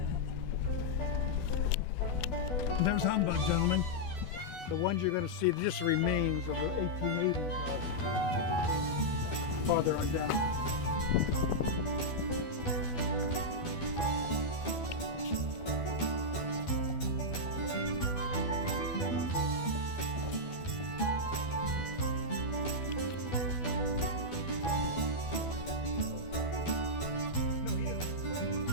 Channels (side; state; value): right; late; 12 ms